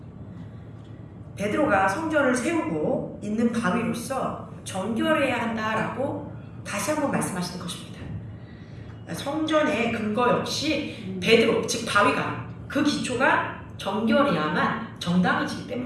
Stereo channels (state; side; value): identical; both; correlation 1.00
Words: 베드로가 성전을 세우고 있는 바위로서 정결해야 한다라고 다시 한번 말씀하시는 것입니다. 성전의 근거 역시 베드로, 즉 바위가, 그 기초가 정결해야만 정당해지기